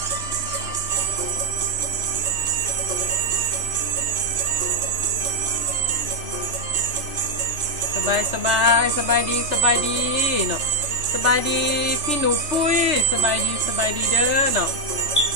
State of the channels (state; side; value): late; left; 3.3 ms